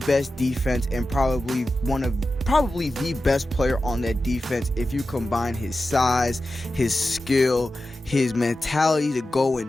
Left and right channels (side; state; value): both; normal; correlation 0.93